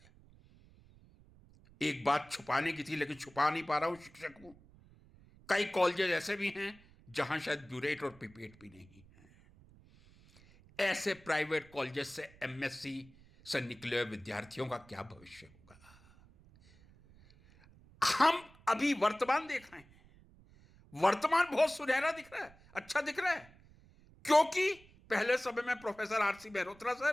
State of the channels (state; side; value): noise; right; rumble, 25 dB below the sound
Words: एक बात छुपाने की थी लेकिन छुपा नहीं पा रहा हूं, शिक्षक हूं। कई कॉलेजेस ऐसे भी हैं जहां शायद ब्यूरेट और पिपेट भी नहीं है। ऐसे प्राइवेट कॉलेजेस से एमएससी से निकले हुए विद्यार्थियों का क्या भविष्य होगा? हम अभी वर्तमान देख रहे हैं, वर्तमान बहुत सुनहरा दिख रहा है, अच्छा दिख रहा है, क्योंकि पहले समय में प्रोफेसर आरसी मेहरोत्रा